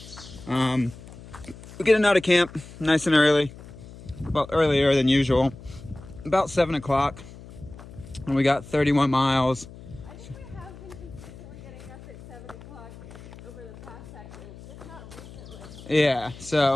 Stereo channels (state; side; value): noise; left; hum, 17 dB below the sound